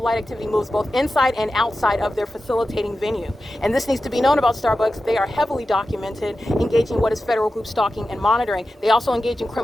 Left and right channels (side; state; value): both; normal; correlation 0.93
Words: light activity moves both inside and outside of their facilitating venue. And this needs to be known about Starbucks. They are heavily documented engaging in what is federal group stalking and monitoring. They also engage in